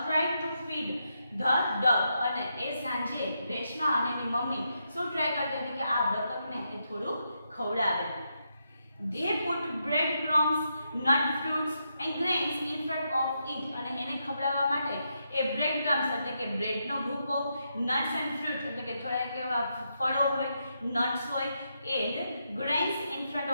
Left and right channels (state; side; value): inverted; both; correlation -0.82